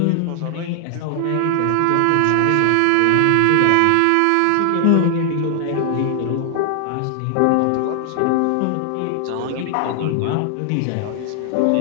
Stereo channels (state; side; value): different; both; correlation 0.00